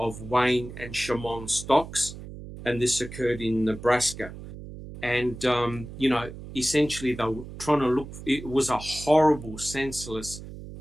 Wayne and Shamon Stocks, and this occurred in Nebraska. And essentially they were trying to look. It was a horrible, senseless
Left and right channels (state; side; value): noise; right; hum, 12 dB below the sound